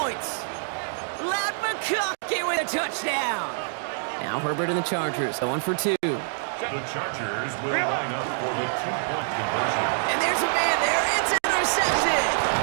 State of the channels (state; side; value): silent; left; digital silence